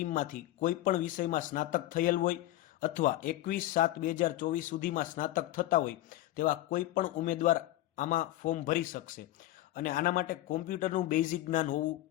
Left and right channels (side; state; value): right; quieter; 15.5 dB